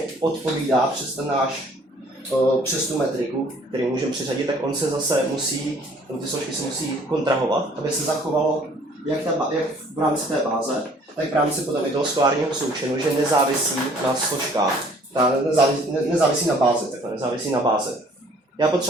odpovídá přes ten přes tu metriku, který můžeme přiřadit, tak on se zase musí, ty složky se musí kontrahovat, aby se zachovalo jak v rámci té báze, tak v rámci potom i toho skolárního součinu, že nezávisí na složkách, nezávisí na bázi, takhle nezávisí na bázi. Já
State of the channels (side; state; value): both; normal; correlation 0.57